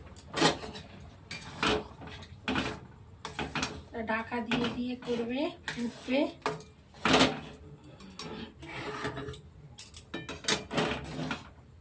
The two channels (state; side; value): identical; both; correlation 1.00